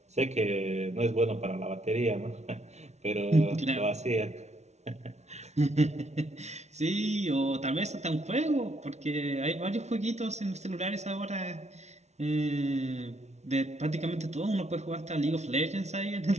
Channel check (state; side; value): late; left; 0.32 ms